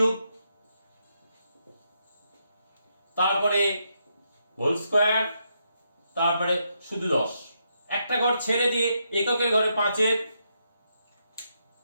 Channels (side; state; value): both; inverted; correlation -0.80